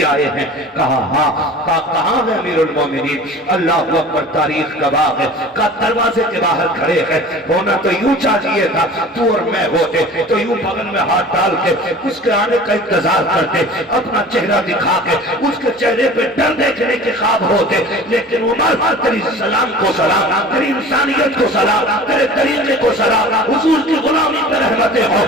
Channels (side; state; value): both; normal; correlation 0.41